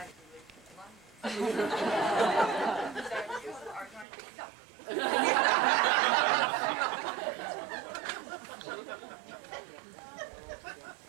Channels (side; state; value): left; drops out; at 4.0 s